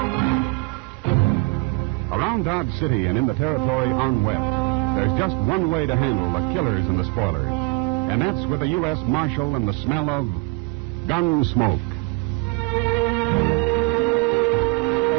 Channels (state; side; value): quieter; left; 27.0 dB